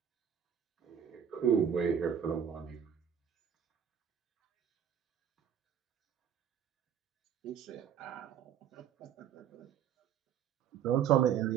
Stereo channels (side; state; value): left; quieter; 8.7 dB